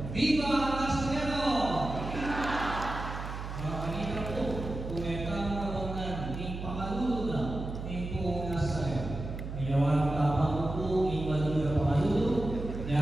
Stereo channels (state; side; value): noise; right; hum, 7 dB below the sound